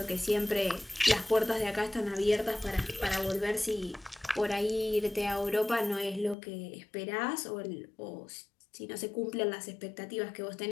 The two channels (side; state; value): right; drops out; at 6.4 s